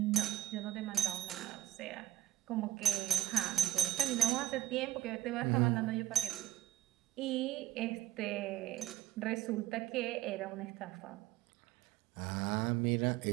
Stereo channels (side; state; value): left; quieter; 13.5 dB